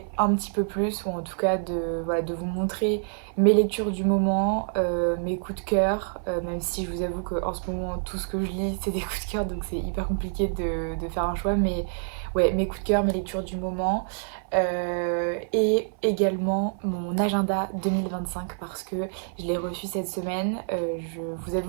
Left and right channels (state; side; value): silent; left; 56 dB below the other